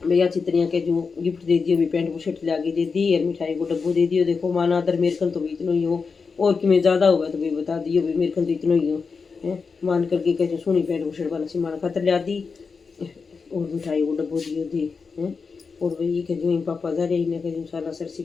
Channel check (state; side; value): quieter; right; 5.0 dB